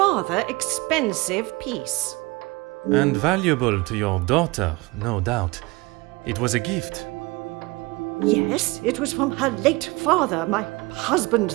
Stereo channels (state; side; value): quieter; left; 23.7 dB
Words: expensive piece. And valuable to your daughter, no doubt. It was a gift. Yes, it was from her late father, my husband,